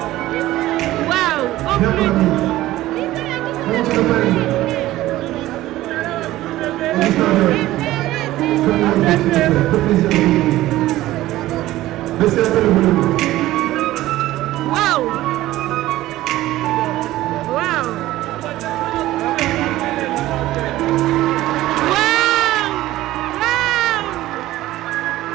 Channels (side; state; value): left; quieter; 15.9 dB